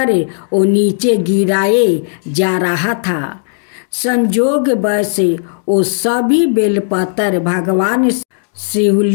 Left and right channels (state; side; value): silent; right; digital silence